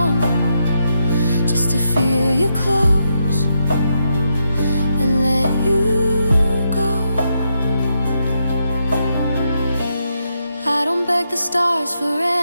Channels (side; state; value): both; inverted; correlation -0.82